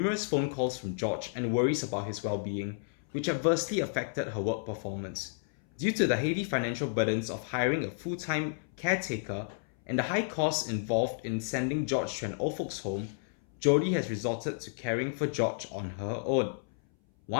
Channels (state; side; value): silent; right; 57 dB below the other